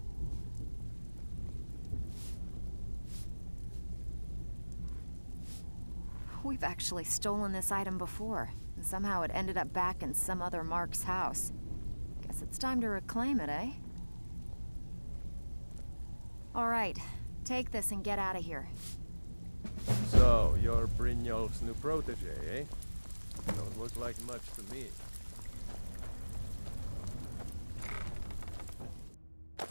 We've actually stolen this item before, and somehow it ended up back in some other Mark's house. Guess it's time to reclaim it, eh? All right, take this and get out of here. So, you're Brynjolf's new protege, eh? Don't look like much to me.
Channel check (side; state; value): both; inverted; correlation -1.00